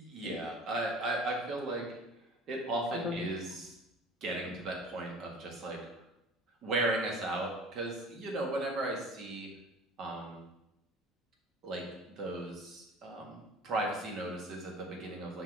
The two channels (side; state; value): both; normal; correlation 0.43